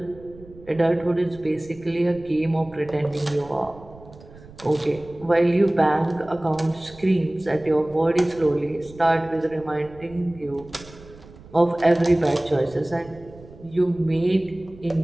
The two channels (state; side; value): noise; right; rumble, 21 dB below the sound